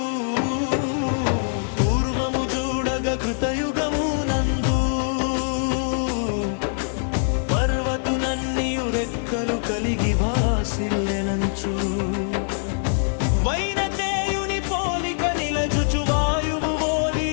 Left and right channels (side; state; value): right; silent; digital silence